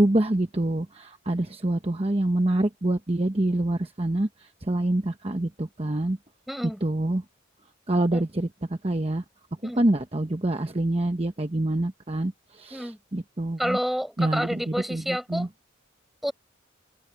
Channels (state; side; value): normal; both; correlation 0.89